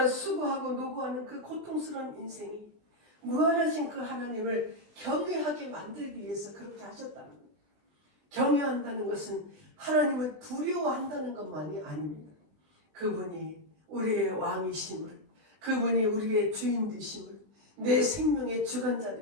수고하고 노고하는 그 고통스러운 인생이 무한하신 그 하나님을 경외하게 만들기 위해서 그렇게 하셨다는 거예요. 경외한다는 것은 하나님을 두려워한다는 것만이 아닙니다. 그분이 우리의 왕이심을, 그분이 우리의 주인 되심을, 내 생명의 주관자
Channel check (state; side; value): late; left; 20 ms